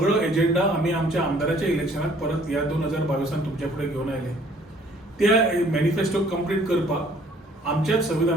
एजेंडा आमी आमच्या आमदाराच्या इलेक्शनाक परत ह्या 2022 तुमच्या फुडें घेवन आयले. त्या मॅनिफेस्टो कंप्लीट करपाक आमच्याच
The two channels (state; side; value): normal; both; correlation 0.58